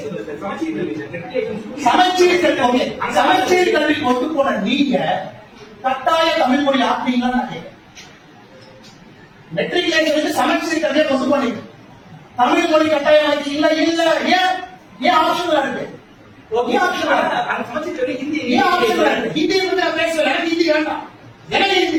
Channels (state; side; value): identical; both; correlation 1.00